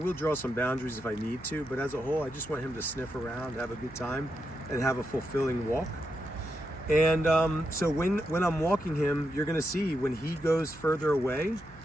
draw some boundaries if I need to, but as a whole, I just want him to sniff around, have a good time, and have a fulfilling walk. And so when I'm walking him, you're gonna see when he goes further away,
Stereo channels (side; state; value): right; noise; hum, 21 dB below the sound